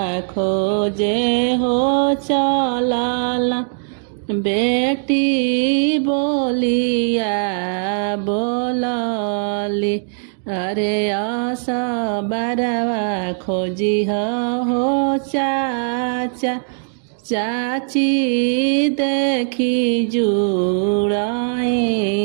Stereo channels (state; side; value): silent; left; digital silence